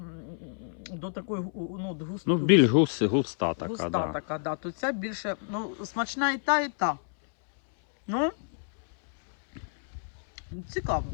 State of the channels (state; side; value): silent; right; 59 dB below the other